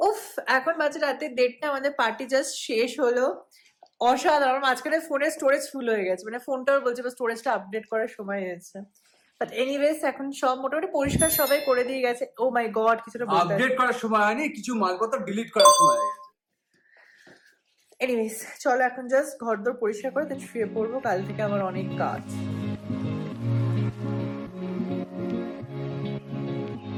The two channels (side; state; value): both; identical; correlation 1.00